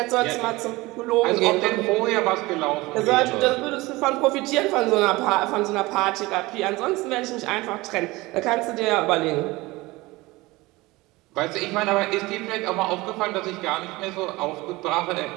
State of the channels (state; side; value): quieter; left; 21.1 dB